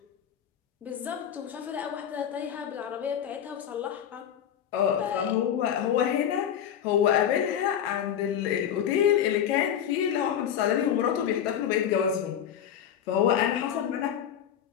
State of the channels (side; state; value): right; quieter; 9.4 dB